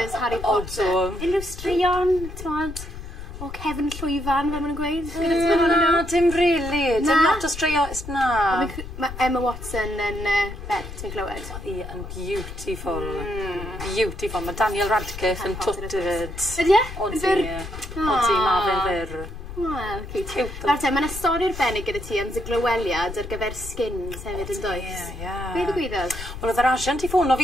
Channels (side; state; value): left; noise; rumble, 10 dB below the sound